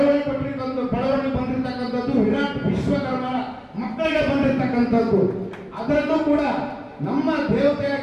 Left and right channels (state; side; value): identical; both; correlation 1.00